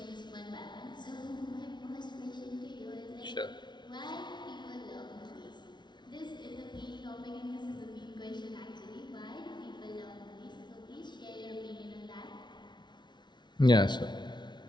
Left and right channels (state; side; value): late; right; 0.21 ms